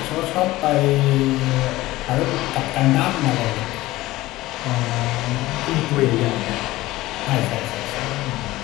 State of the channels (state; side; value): quieter; right; 17.7 dB